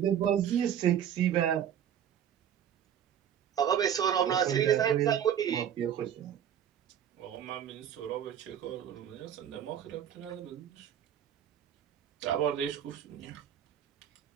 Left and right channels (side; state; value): left; quieter; 9.6 dB